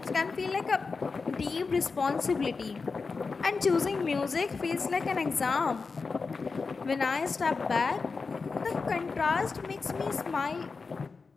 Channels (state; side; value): quieter; right; 4.5 dB